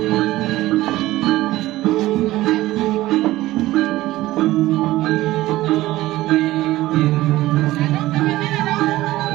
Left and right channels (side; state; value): left; quieter; 16.7 dB